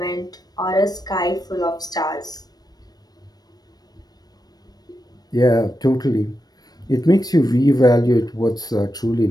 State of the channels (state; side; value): late; right; 0.19 ms